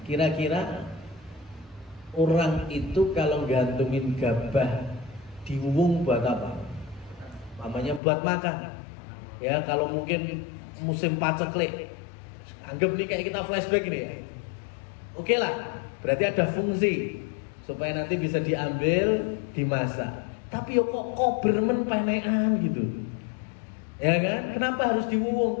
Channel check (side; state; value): right; drops out; at 8.0 s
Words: kira-kira orang itu kalau gantungin gabah di wuwung buat apa? Namanya buat makan. Ya, kalau mungkin musim paceklik, anggap nih kayak kita flashback ini ya. Oke lah, berarti ada fungsi supaya nanti bisa diambil, dimasak. Tapi yo kok bermen pemean gitu. Ya kan? Kenapa harus